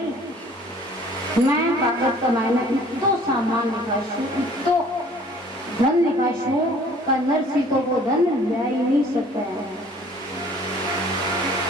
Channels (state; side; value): normal; both; correlation 0.53